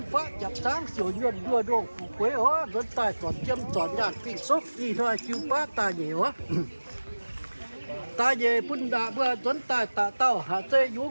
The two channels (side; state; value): both; inverted; correlation -1.00